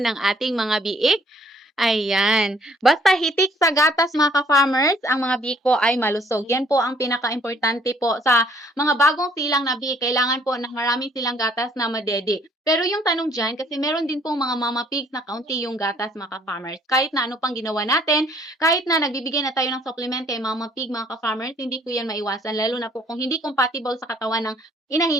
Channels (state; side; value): normal; both; correlation 0.62